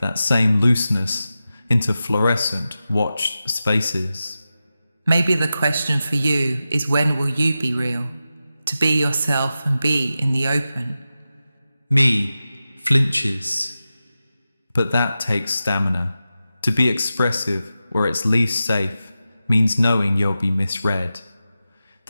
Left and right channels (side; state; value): both; inverted; correlation -0.93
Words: that same looseness into fluorescent, watched spaces. Maybe the question for you is, when will you be real? To be yourself and be in the open. Me flinches. But that takes stamina. To be expressive where it's least safe means knowing you'll be misread.